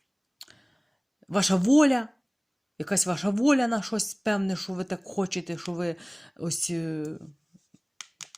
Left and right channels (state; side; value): identical; both; correlation 1.00